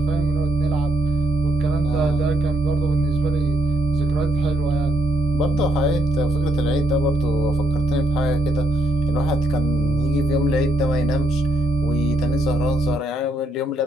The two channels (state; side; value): normal; both; correlation 0.75